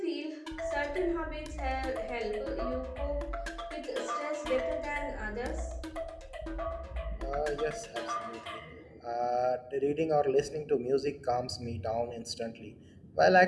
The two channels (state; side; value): identical; both; correlation 1.00